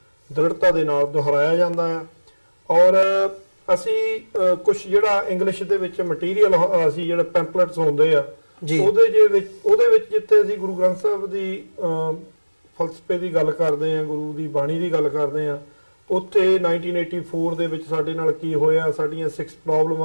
ਦ੍ਰਿੜਤਾ ਦੇ ਨਾਲ ਦੁਹਰਾਇਆ ਜਾਂਦਾ ਆ। ਔਰ ਅਸੀਂ ਕੁਝ ਜਿਹੜਾ ਇੰਗਲਿਸ਼ ਦੇ ਵਿੱਚ ਮਟੀਰੀਅਲ ਅਸੀਂ ਜਿਹੜੇ ਪੈਂਪਲੇਟਸ ਹੁੰਦੇ ਆ ਉਹਦੇ ਵਿੱਚ ਜਿੱਥੇ ਅਸੀਂ ਗੁਰੂ ਗ੍ਰੰਥ ਸਾਹਿਬ ਦੀ ਫਲਸਫੇ ਦੀ ਗੱਲ ਕਰਦੇ ਆ, ਗੁਰੂ ਦੀ ਬਾਣੀ ਦੀ ਗੱਲ ਕਰਦੇ ਆ, ਉੱਥੇ 1984 ਦੇ ਵਿੱਚ ਸਾਡੇ ਨਾਲ ਕੀ ਹੋਇਆ, ਸਾਡੀਆਂ 6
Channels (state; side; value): inverted; both; correlation -1.00